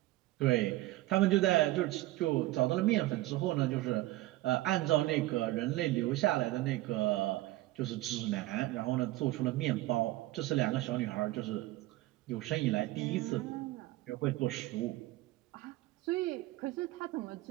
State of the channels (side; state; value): left; quieter; 17.6 dB